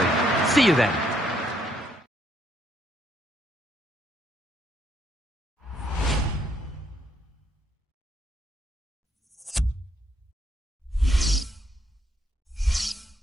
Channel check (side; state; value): both; normal; correlation 0.72